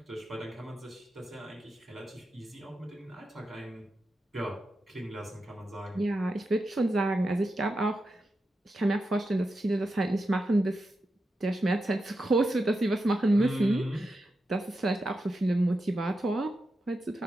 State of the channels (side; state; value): both; normal; correlation 0.89